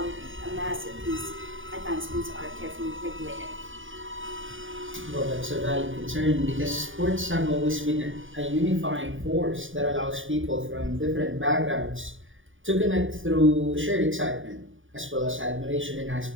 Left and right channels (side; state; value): left; late; 0.57 ms